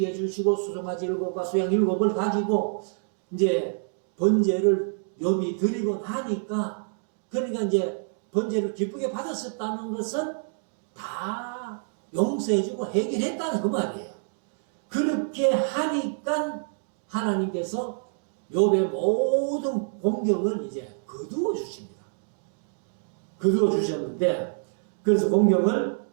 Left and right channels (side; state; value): left; silent; digital silence